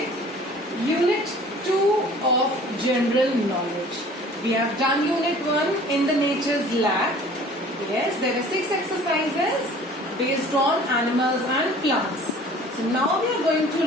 Unit 2 of General Knowledge. We have done Unit 1 in the Nature's Lab. Yes, there are 6 exercises based on animals and plants. So now we are going to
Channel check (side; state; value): both; normal; correlation 0.48